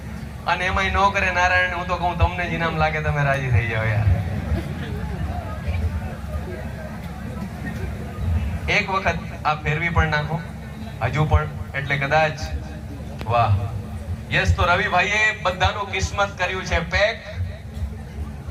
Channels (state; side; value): identical; both; correlation 1.00